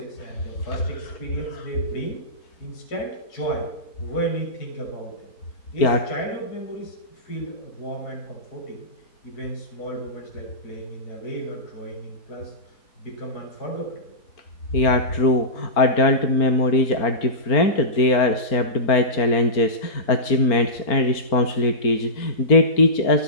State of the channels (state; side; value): late; right; 4.4 ms